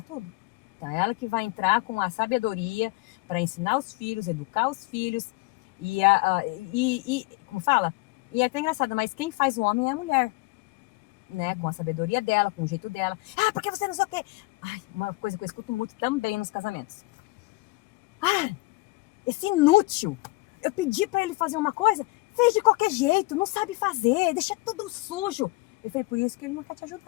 tudo. Então, ela que vai entrar com a sabedoria para ensinar os filhos, educar os filhos. Como fala? E é até engraçado, mas quem faz o homem é a mulher. Né? Com a sabedoria dela, com o jeito dela. Porque você não sei o quê. Uma coisa que eu escuto muito também nos casamentos. Esse inútil. Eu pedi para ele fazer uma coisa, fez de qualquer jeito, não sabe fazer, deixa tudo sujo. Eu falei, por isso que ele não quer te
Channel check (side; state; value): right; quieter; 23.2 dB